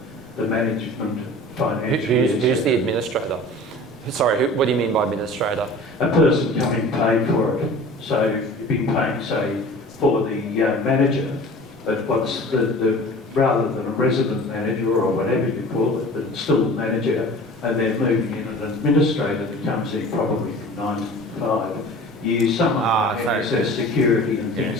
the management, financial... Who's the administrator? Sorry, what do you mean by administrator? A person coming paid for it. So you've been paying, say, for the manager, but what's rather than a resident manager or whatever you call it, but still a manager, and they're moving in an administrator that comes in probably from 9 to 5. You use some access security and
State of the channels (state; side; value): normal; both; correlation 0.42